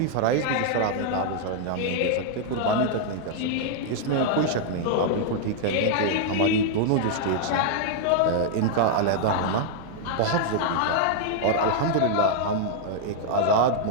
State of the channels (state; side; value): different; both; correlation -0.01